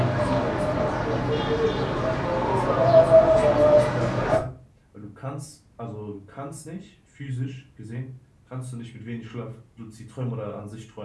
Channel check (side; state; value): both; identical; correlation 1.00